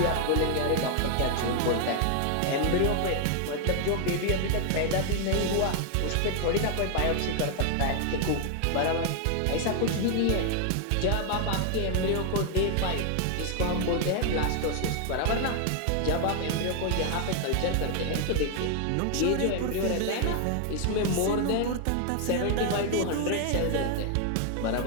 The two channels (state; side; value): different; both; correlation 0.00